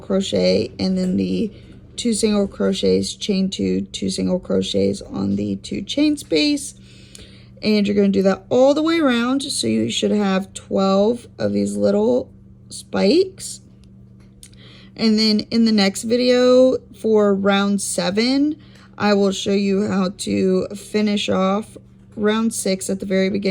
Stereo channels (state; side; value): identical; both; correlation 1.00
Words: and then the 2 single crochets, chain 2 single crochets on the 2 chain space, and you're going to do that all the way around. So you should have 12 of these little spikes. And then in the next video for round 7, I will show you how to finish off round 6 at the very